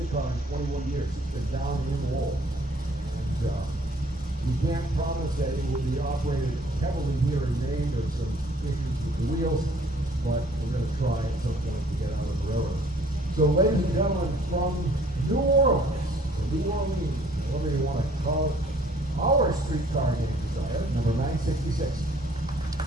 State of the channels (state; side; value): normal; both; correlation 0.58